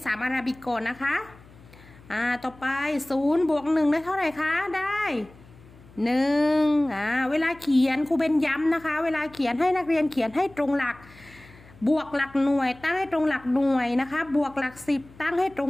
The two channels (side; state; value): left; noise; hum, 24 dB below the sound